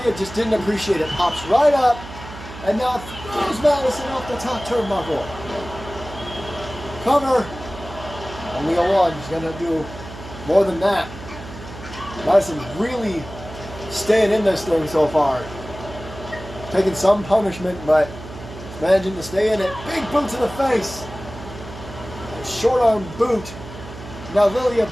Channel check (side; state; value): right; noise; hum, 14 dB below the sound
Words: just didn't appreciate it. Pops right up, and now throws Madison off the top turnbuckle. Cover. Only a 1. She's going to do more than that. Madison really staying in this thing so far. Taking some punishment, but managing to stay in it. Big boot to the face. Short arm boot. Now Lilia